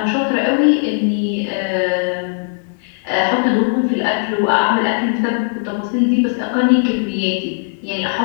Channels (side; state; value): right; silent; digital silence